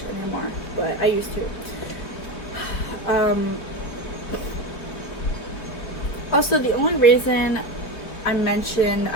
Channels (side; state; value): right; late; 3.5 ms